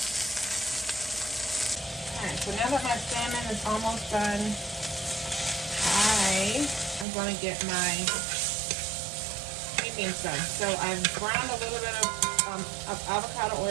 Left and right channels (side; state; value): left; drops out; at 7.1 s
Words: Alright, so now that my salmon is almost done, I am going to get my sweet beans done. So I've browned a little bit of avocado